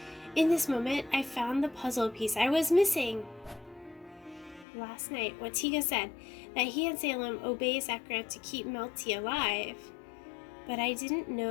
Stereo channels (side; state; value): right; drops out; at 4.7 s